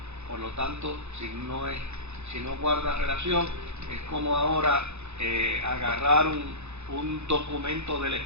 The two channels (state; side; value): late; left; 0.81 ms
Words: Por lo tanto, si no guarda relación, es como ahora agarrar un documento del